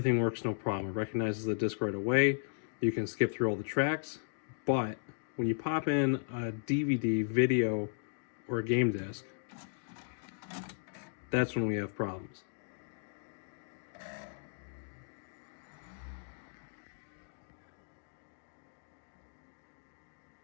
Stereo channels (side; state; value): right; silent; digital silence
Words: works no problem. It recognizes the disc right away. You can skip through all the tracks, but when you pop in a DVD, video, or a game disc, that's when we have problems.